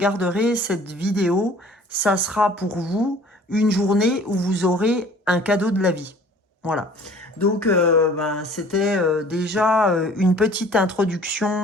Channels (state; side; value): normal; both; correlation 0.50